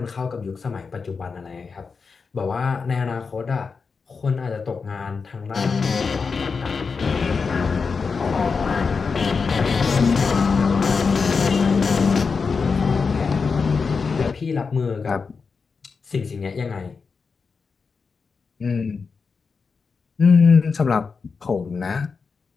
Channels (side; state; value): right; quieter; 5.1 dB